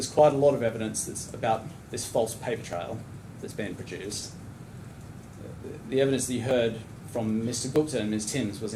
quite a lot of evidence that's about this false paper trail that's been produced. The evidence that you heard from Mr. Gupta and Ms. Timms was,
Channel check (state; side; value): identical; both; correlation 1.00